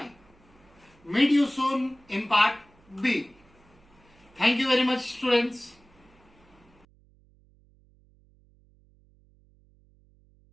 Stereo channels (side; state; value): right; noise; hum, 30 dB below the sound